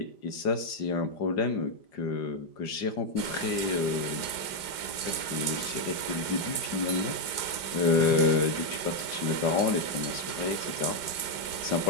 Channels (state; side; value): late; right; 5.0 ms